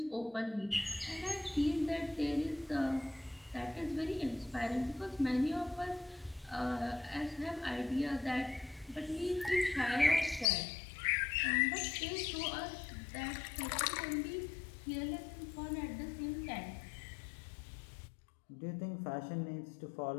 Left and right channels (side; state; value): right; drops out; at 10.5 s